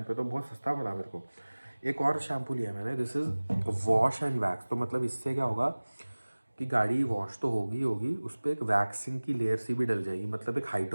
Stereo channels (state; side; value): inverted; both; correlation -1.00